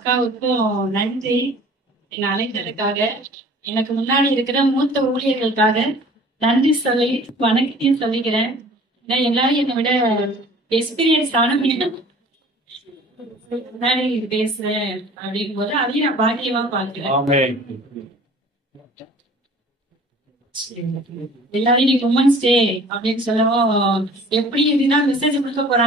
நன்றி. என்னை அழைத்ததுக்காக, எனக்கு முன்னாடி இருக்கிற மூத்த ஊழியர்களுக்காக நன்றி சொல்லி வணக்கத்தையும் சொல்லிக்கிறேன். ஏன்னா எல்லாரும் என்னை விட எக்ஸ்பீரியன்ஸ் ஆனவங்க முன்னாடி பேசுறேன் அப்படின் போது அதையும் நான் பாக்கியமா பார்க்கிறேன். எல்லாரும் இன்னைக்கு உமன்ஸ் டே அப்படின்னு சொல்லவும் எப்படி இதுதான் மெசேஜ் கொடுக்க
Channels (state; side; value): normal; both; correlation 0.48